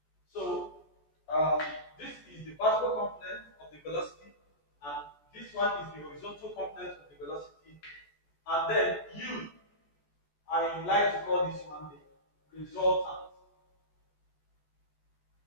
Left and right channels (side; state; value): right; late; 14 ms